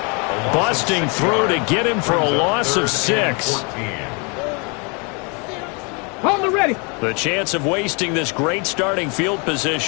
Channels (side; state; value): right; quieter; 32.8 dB